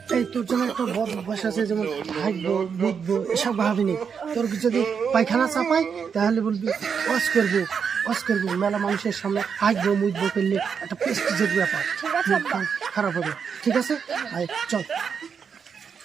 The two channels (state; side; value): quieter; left; 6.6 dB